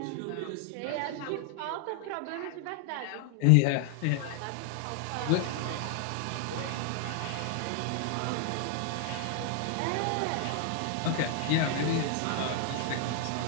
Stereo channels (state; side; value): different; both; correlation 0.00